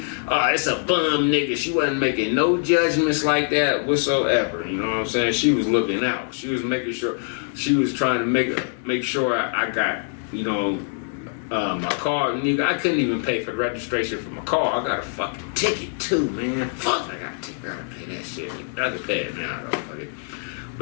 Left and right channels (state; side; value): silent; right; 63 dB below the other